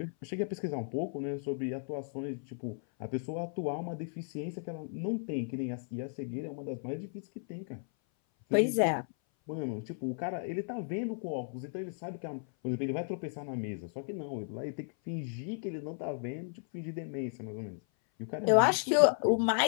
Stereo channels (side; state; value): right; silent; 55 dB below the other